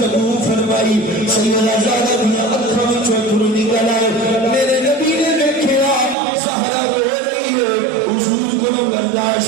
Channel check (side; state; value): left; drops out; at 6.2 s